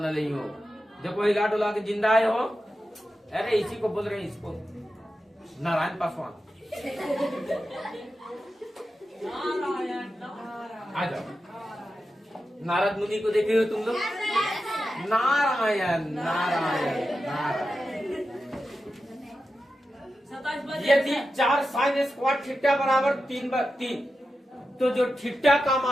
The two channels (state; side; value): normal; both; correlation 0.91